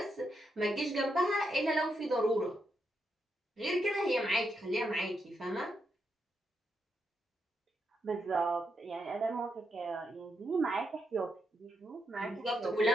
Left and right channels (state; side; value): normal; both; correlation 0.82